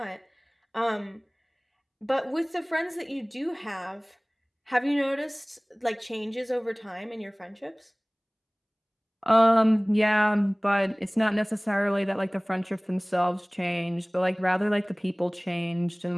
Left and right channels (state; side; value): identical; both; correlation 1.00